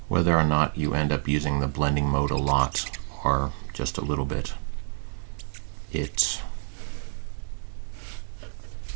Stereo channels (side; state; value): left; silent; 60 dB below the other